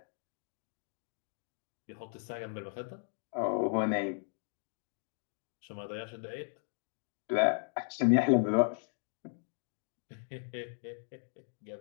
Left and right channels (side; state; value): right; silent; digital silence